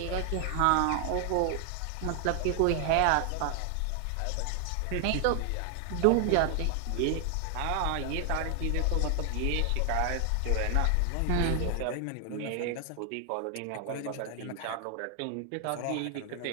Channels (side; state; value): both; different; correlation 0.00